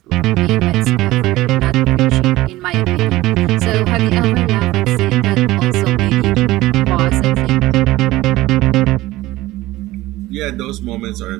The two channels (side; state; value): left; quieter; 17.7 dB